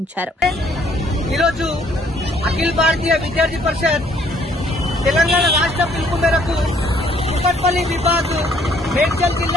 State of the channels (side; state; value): both; normal; correlation 0.63